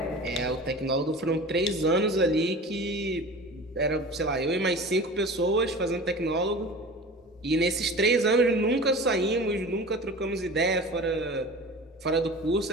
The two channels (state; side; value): normal; both; correlation 0.37